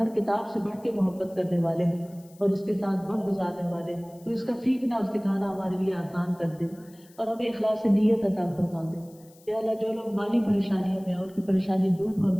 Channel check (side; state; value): left; noise; hiss, 27 dB below the sound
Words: کتاب سے بڑھ کے محبت کرنے والے ہیں اور اس کے ساتھ وقت گزارنے والے ہیں. تو اس کا سیکھنا اور سکھانا ہمارے لیے آسان کر دے اور ہمیں اخلاص نیت عطا فرما دے. یا اللہ جو لوگ مالی پریشانیوں میں ان کی پریشانی دور